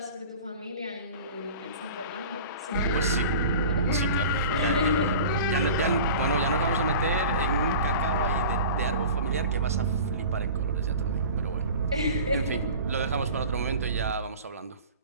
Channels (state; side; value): inverted; both; correlation -0.38